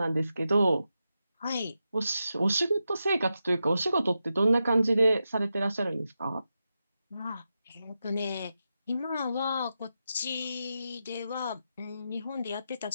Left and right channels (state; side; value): inverted; both; correlation -0.88